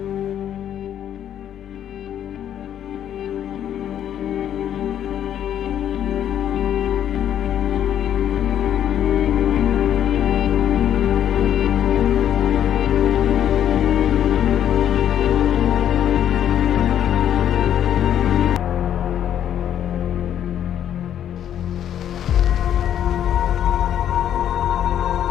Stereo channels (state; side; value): quieter; right; 10.2 dB